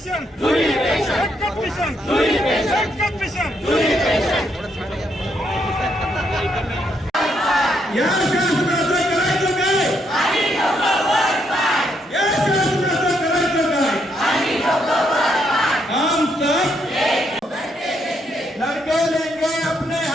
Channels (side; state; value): both; normal; correlation 0.75